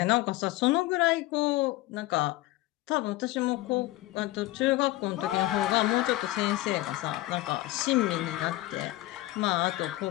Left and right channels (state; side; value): quieter; right; 17.8 dB